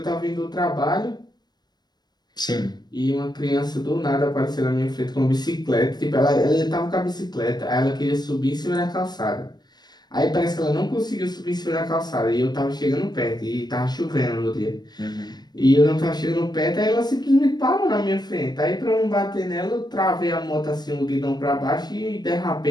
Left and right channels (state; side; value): late; right; 0.20 ms